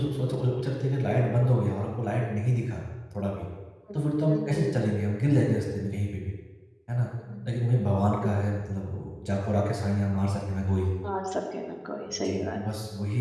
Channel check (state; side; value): identical; both; correlation 1.00